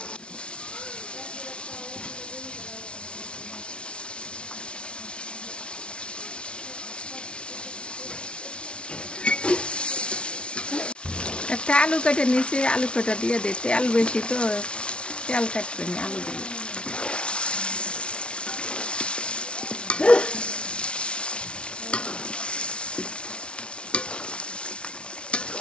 একটা আলু কেটে নিয়েছি, আলু কেটে দিয়ে দিই, তেল বেশি তো তেল কাটবে না, আলু দিয়ে।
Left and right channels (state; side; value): late; right; 0.058 ms